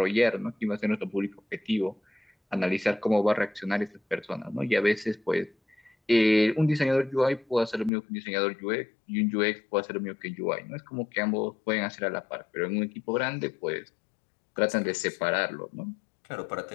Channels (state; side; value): drops out; right; at 7.9 s